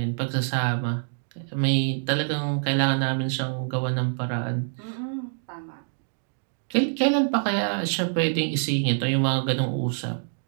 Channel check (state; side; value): silent; left; 61 dB below the other